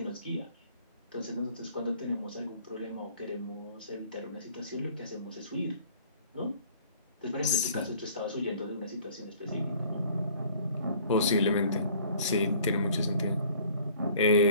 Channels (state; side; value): inverted; both; correlation -0.53